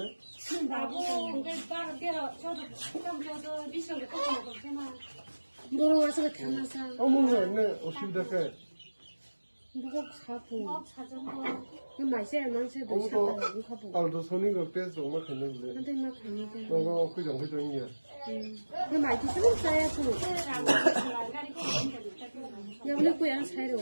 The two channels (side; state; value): both; inverted; correlation -1.00